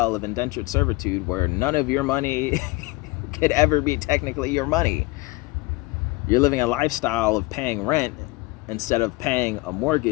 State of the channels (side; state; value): right; quieter; 22.4 dB